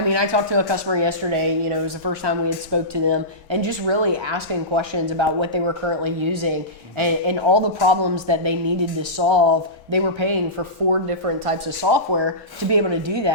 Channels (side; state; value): both; normal; correlation -0.18